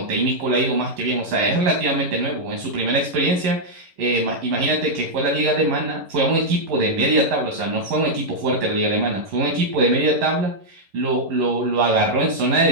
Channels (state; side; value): late; left; 11 ms